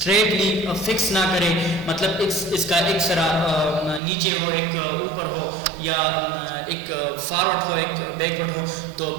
فکس نہ کریں, مطلب اس کا ایک سرا نیچے ہو ایک اوپر ہو یا ایک فارورڈ ہو ایک بیکورڈ ہو, تو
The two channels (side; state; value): left; drops out; at 4.0 s